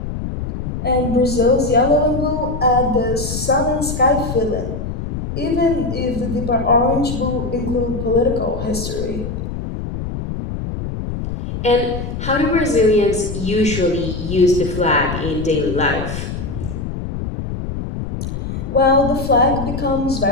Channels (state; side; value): noise; left; rumble, 5 dB below the sound